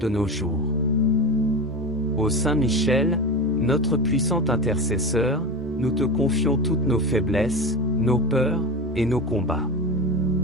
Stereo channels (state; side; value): normal; both; correlation 0.24